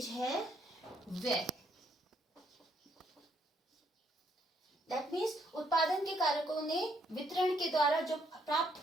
है व्यय। दैट मीन्स उत्पादन के कारकों ने वितरण के द्वारा जो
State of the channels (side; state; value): both; normal; correlation 0.71